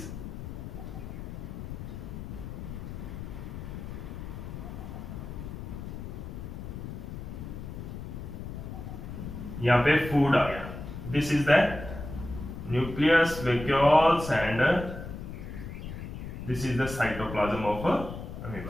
यहाँ पे फूड आ गया। This is the nucleus, vacuoles and this is the cytoplasm of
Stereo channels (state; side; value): noise; left; rumble, 8 dB below the sound